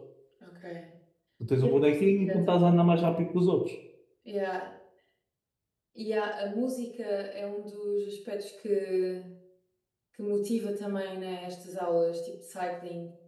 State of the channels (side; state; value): both; identical; correlation 1.00